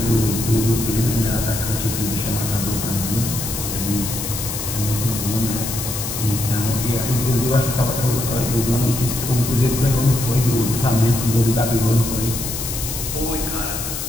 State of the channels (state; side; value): noise; left; hiss, 5 dB below the sound